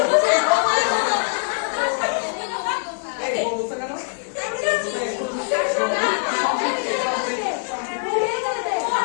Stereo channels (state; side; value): silent; right; 64 dB below the other